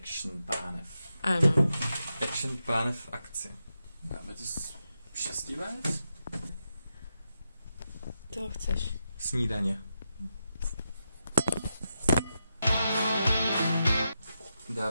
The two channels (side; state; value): both; inverted; correlation -0.87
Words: pánev. Ano. Action pánev v akci. Dáme to šestivec? To chceš. Snídaně.